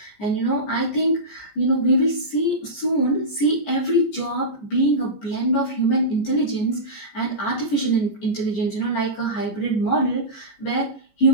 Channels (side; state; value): right; late; 14 ms